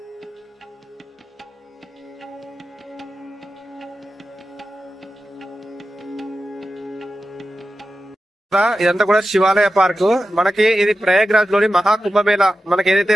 ఇదంతా కూడా శివాలయ పార్క్. మనకి ఇది ప్రయాగ్రాజ్ లోని మహాకుంభమేళ మనకి ఏదైతే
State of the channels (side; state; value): both; normal; correlation 0.92